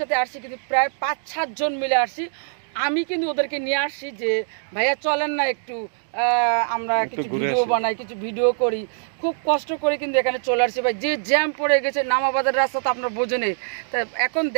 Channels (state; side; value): silent; left; digital silence